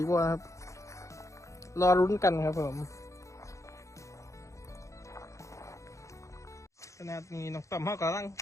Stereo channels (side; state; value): right; late; 0.15 ms